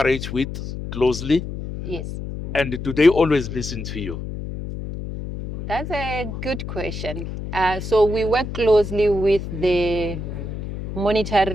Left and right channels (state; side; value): noise; left; hum, 7 dB below the sound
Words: with closely? Yes. And do they always listen to you? That's a good question. So we work closely with the